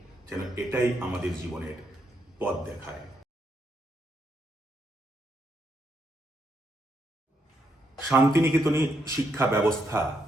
যেন এটাই আমাদের জীবনের পথ দেখায়। শান্তিনিকেতনী শিক্ষা ব্যবস্থা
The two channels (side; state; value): both; normal; correlation 0.78